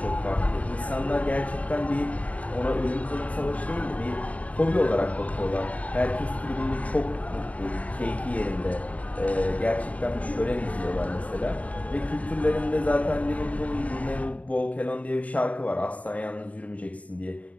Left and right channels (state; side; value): late; right; 0.069 ms